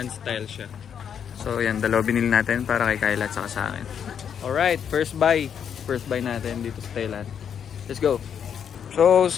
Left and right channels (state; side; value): quieter; right; 8.0 dB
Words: style siya. So, yan, dalawa binili natin para kay Kyla at saka sa akin. Alright, first buy. First buy natin dito sa Thailand. Let's go! So,